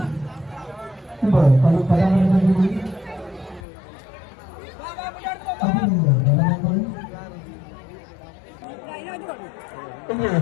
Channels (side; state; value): right; drops out; at 3.6 s